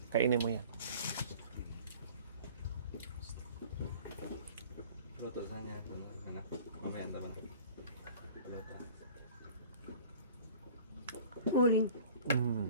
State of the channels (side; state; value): both; inverted; correlation -0.47